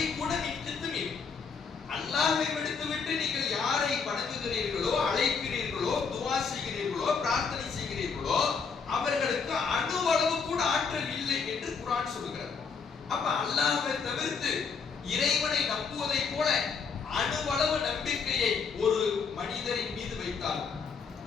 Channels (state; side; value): quieter; right; 5.5 dB